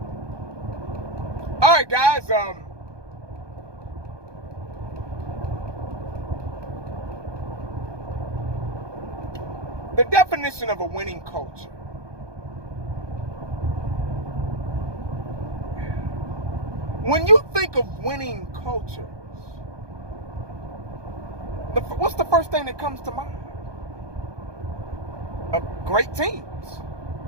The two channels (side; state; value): left; late; 1.2 ms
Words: All right, guys. The definition of a winning culture. When you think of winning cultures, what's the first thing that comes to mind? Great teams.